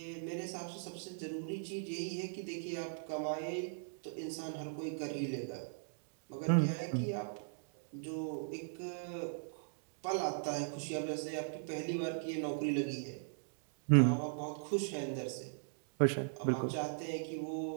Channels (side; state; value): left; silent; digital silence